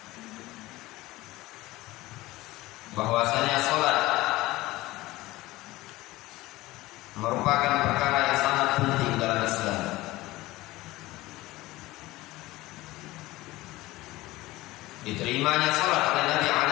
bahwasanya salat merupakan perkara yang sangat penting dalam Islam. Diterimanya salat oleh Nabi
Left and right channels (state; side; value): quieter; right; 18.7 dB